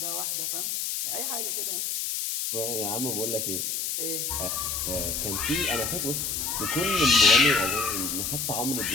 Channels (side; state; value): left; noise; hiss, 1 dB below the sound